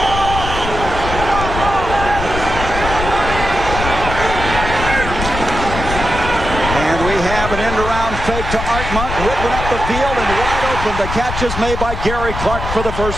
Fake to Art Monk, ripping up the field and wide open. The catch is made by Gary Clark for the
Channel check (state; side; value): noise; left; rumble, 5 dB below the sound